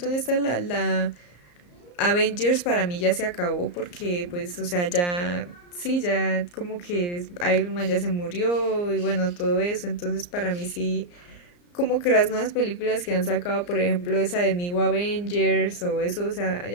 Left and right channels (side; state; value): right; late; 34 ms